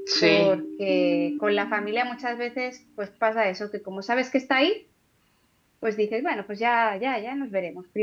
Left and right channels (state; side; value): identical; both; correlation 1.00